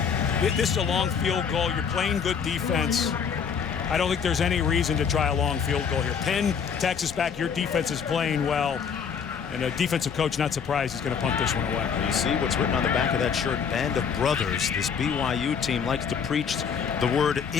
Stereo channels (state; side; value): quieter; right; 6.7 dB